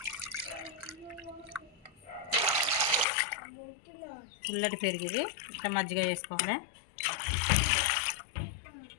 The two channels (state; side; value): drops out; right; at 3.1 s